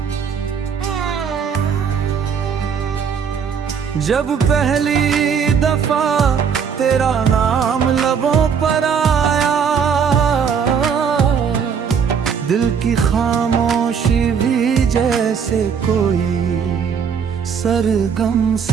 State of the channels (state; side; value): quieter; left; 6.8 dB